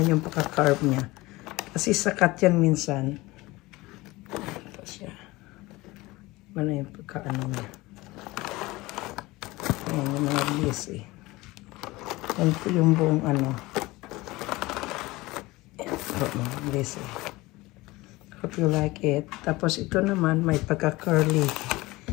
yung pagka-carve niya. Kasi sakat yan minsan. Ito siya. Iba na yung pagka-ano niya. Yan yung mga blessy. Yan po yung buong ano. Yan po mga blessy. Hope you like it. Tapos ito naman may pagka-curly.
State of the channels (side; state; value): right; quieter; 20.7 dB